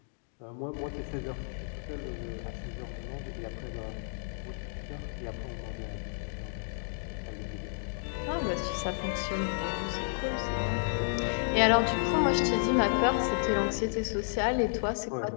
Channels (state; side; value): silent; right; digital silence